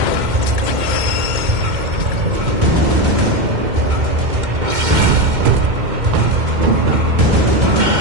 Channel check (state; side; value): late; left; 2.1 ms